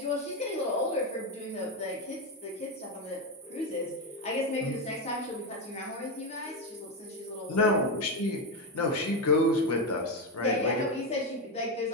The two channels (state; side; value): normal; both; correlation 0.11